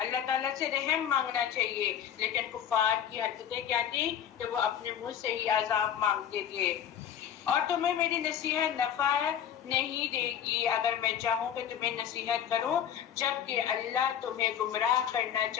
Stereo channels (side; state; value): right; quieter; 9.4 dB